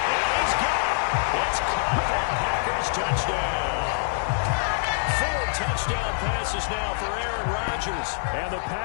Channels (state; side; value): silent; right; 62 dB below the other